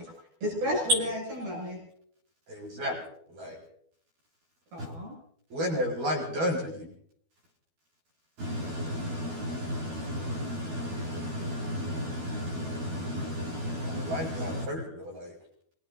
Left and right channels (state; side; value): late; left; 12 ms